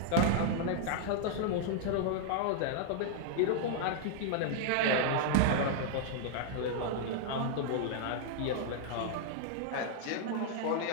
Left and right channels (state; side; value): different; both; correlation -0.01